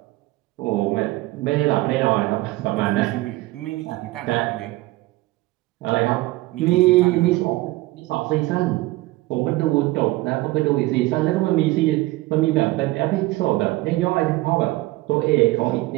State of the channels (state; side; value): quieter; left; 19.5 dB